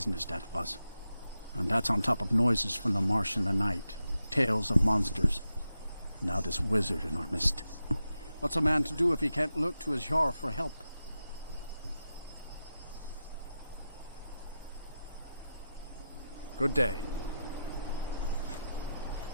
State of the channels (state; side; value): inverted; both; correlation -0.89